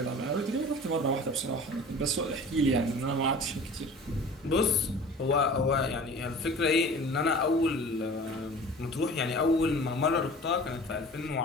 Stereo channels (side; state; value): both; normal; correlation 0.42